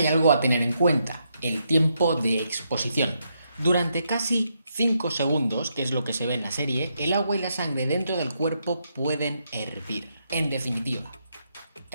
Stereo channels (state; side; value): inverted; both; correlation -0.79